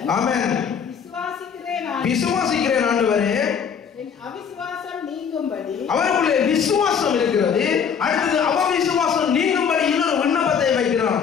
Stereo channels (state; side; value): quieter; right; 7.0 dB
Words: ஆமென் விசுவாசிக்கிறேன் ஆண்டவரே, என் அவிசுவாசம் நீங்கும்படி அவருக்குள்ளே விசுவாசம் இருக்கிறது. அடுத்தது அவ விசுவாசம் நீங்கும்படி இன்னொரு விண்ணப்பத்தை வைக்கிறான்.